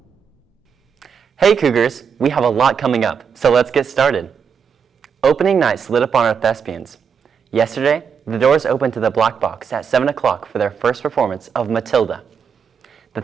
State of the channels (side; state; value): left; quieter; 6.7 dB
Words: Hey Cougars, we have a lot coming up, so let's get started. Opening night slid upon our thespians. Yesterday, the doors opened to the Black Box at 7 o'clock for their first performance of Matilda. The